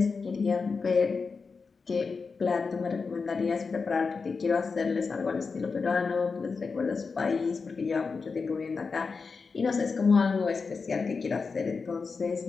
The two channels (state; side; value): quieter; right; 4.8 dB